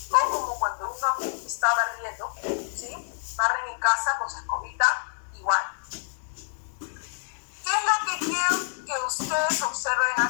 o como cuando uno está barriendo, ¿sí? Barren en casa con su escobita, igual. ¿Qué es lo que quiero que ustedes observen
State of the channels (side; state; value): right; silent; digital silence